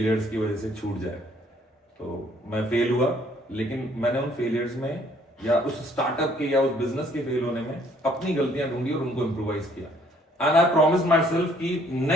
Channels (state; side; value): normal; both; correlation 0.62